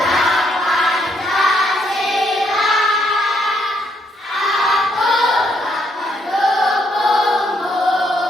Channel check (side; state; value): both; normal; correlation 0.73